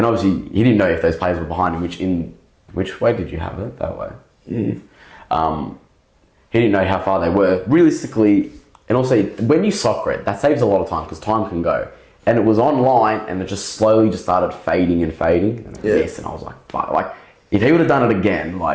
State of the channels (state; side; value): identical; both; correlation 1.00